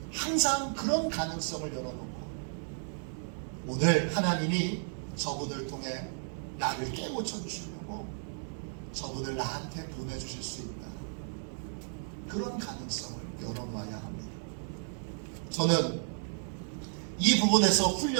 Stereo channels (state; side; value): silent; left; digital silence